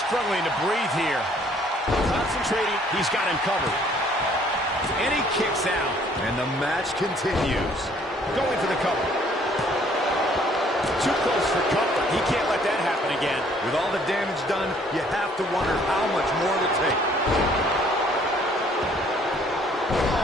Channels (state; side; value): normal; both; correlation 0.61